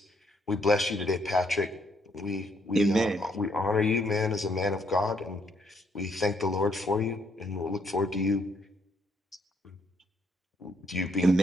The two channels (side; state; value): both; normal; correlation 0.71